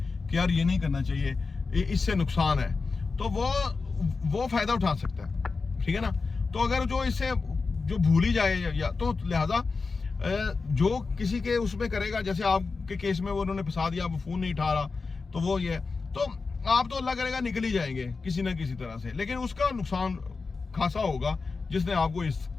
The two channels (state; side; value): quieter; right; 4.3 dB